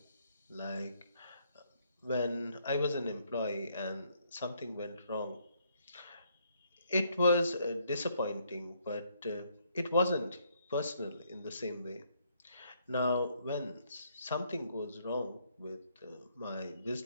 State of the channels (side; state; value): both; inverted; correlation -0.70